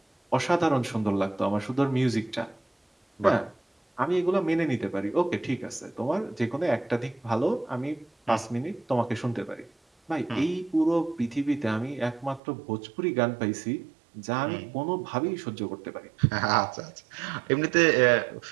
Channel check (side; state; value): left; drops out; at 12.4 s